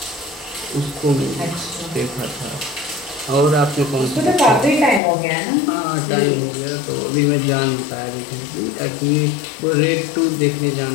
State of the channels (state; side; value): drops out; right; at 5.0 s